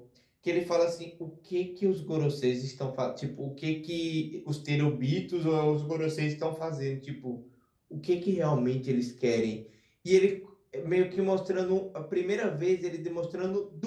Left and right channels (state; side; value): identical; both; correlation 1.00